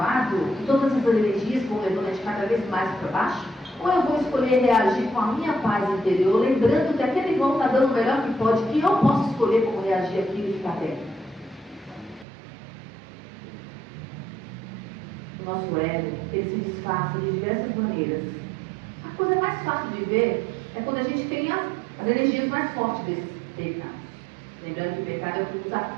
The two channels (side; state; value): left; drops out; at 12.2 s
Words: e todas essas energias vão levando a gente cada vez mais para baixo? Ou eu vou escolher reagir com a minha paz interior, lembrando que aquele irmão está dando o melhor que pode, que eu posso escolher como reagir aquilo e ficar bem? O nosso ego, ele se disfarça de diversas maneiras. A coisa mais fácil de ver é quando a gente tem as energias mais fortes desses pecados. Lembrando que o pecado é o que nos